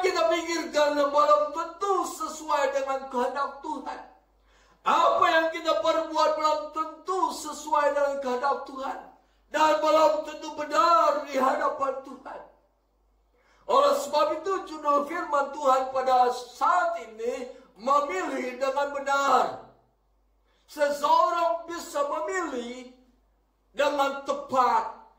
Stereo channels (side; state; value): both; identical; correlation 1.00